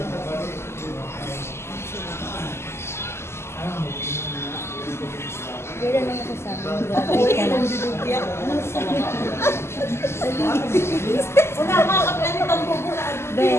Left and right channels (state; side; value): late; right; 0.12 ms